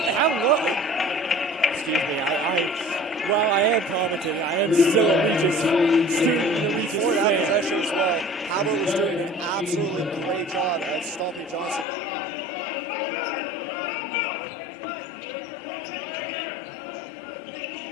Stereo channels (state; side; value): drops out; right; at 11.9 s